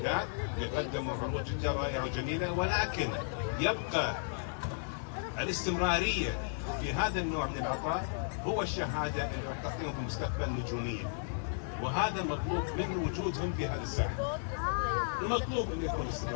اللي قدموا عروض جدا رائعه وجميله، ولكن يبقى الاستمراريه في هذا النوع من العطاء هو الشهاده اللي راح تعطيهم في المستقبل نجوميه، وهذا المطلوب من وجودهم في هذه الساحه. المطلوب انه يكون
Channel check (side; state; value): right; silent; digital silence